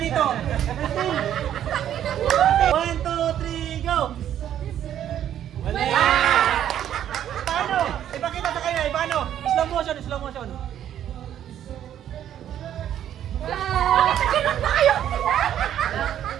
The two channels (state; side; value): quieter; left; 10.6 dB